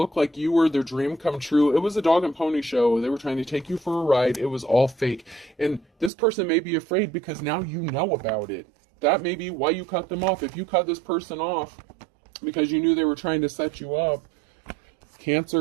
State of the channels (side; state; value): left; drops out; at 6.1 s